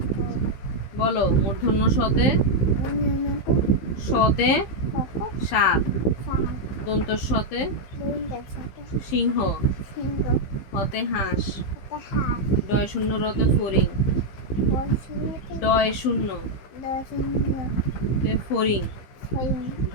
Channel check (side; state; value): right; late; 15 ms